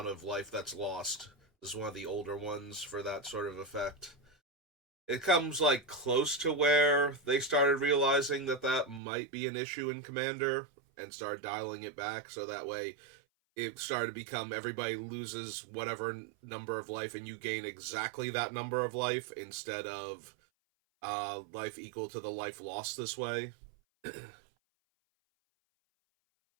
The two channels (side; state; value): left; drops out; at 9.0 s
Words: of life that's lost. This is one of the older ones for that sort of effect. It comes, like, close to where they started realizing that that might be an issue in Commander and started dialing it back, so that way it started to become everybody loses whatever number of life and you gain exactly that number of life instead of life equal to the life lost this way.